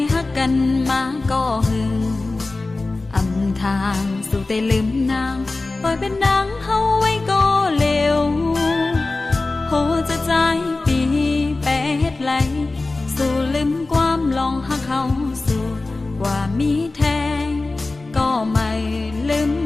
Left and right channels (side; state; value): right; quieter; 3.3 dB